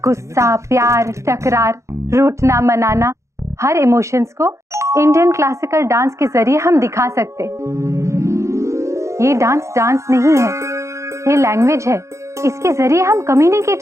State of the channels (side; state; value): left; late; 0.14 ms